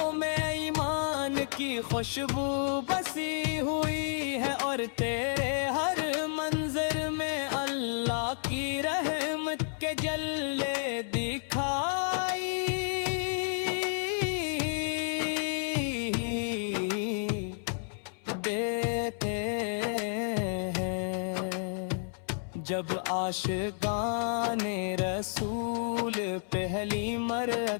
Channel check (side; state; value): right; silent; 57 dB below the other